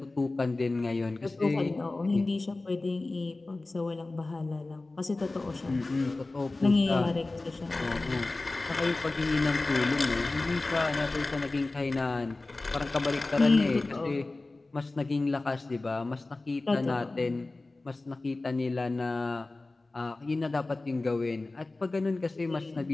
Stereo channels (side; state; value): right; quieter; 3.1 dB